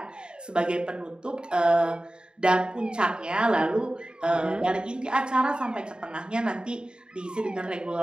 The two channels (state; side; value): late; left; 0.049 ms